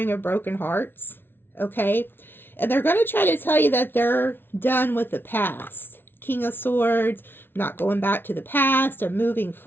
of broken hearts, okay? And they're going to try to tell you that they're done with the past. King of Swords, not going back to the past or moving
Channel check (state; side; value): late; right; 0.11 ms